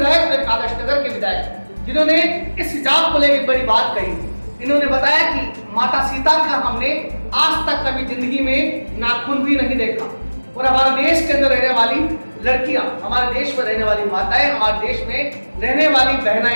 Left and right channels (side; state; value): both; inverted; correlation -1.00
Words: और एक आदर्श नगर के विधायक, जिन्होंने इस हिजाब को लेकर बड़ी बात कही। इन्होंने बताया कि माता सीता का हमने आज तक कभी जिंदगी में नाखून भी नहीं देखा और हमारे देश के अंदर रहने वाली लड़कियां, हमारे देश में रहने वाली माताएं, हमारे देश में रहने वाली